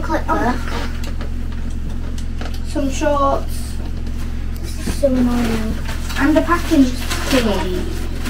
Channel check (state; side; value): identical; both; correlation 1.00